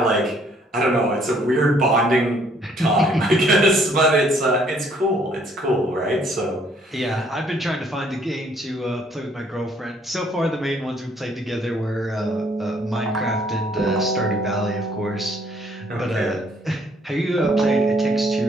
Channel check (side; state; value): both; normal; correlation 0.64